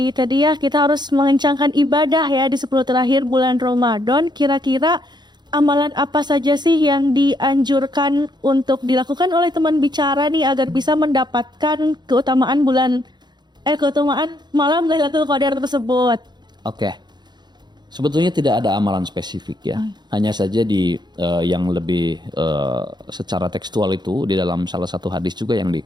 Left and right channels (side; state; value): left; late; 0.21 ms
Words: tadi ya kita harus mengencangkan ibadah ya di 10 terakhir bulan Ramadan. Kira-kira amalan apa saja sih yang dianjurkan untuk dilakukan oleh teman bicara nih agar bisa mendapatkan keutamaan keutamaan malam Lailatul Qadar tersebut? Oke. Sebetulnya tidak ada amalan spesifik ya. Hanya saja di yang lebih secara tekstual itu di dalam salah satu hadis juga yang